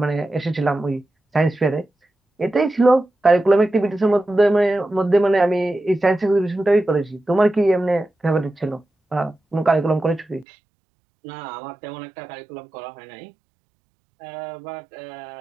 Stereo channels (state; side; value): drops out; left; at 10.5 s